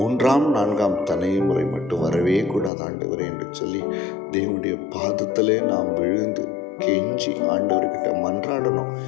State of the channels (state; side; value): drops out; right; at 2.7 s